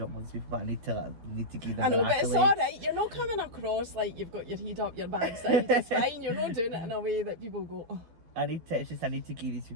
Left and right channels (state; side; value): late; left; 12 ms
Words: all these people, but I need to give them. I know, but it's alright. You're not coming across like you've got your head up your backside. It's fine. You're not doing it in a way that people go, oh. I need to give these